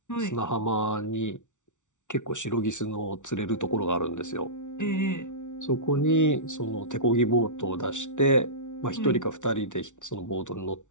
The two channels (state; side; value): late; right; 0.86 ms